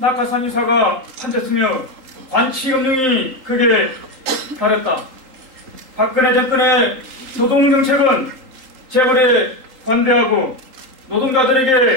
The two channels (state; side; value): late; left; 3.8 ms